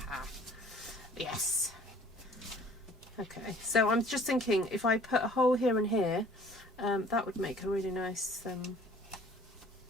Yes. Okay, so I'm just thinking if I put a hole here and here, that would make a really nice,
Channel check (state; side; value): normal; both; correlation 0.54